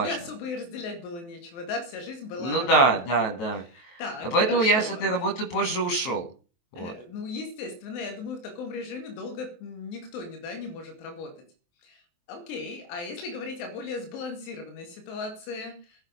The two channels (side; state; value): right; late; 23 ms